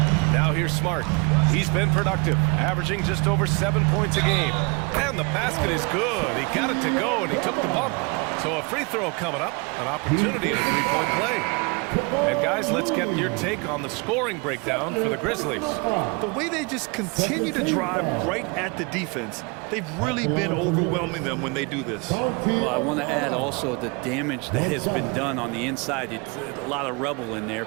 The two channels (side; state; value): left; quieter; 29.9 dB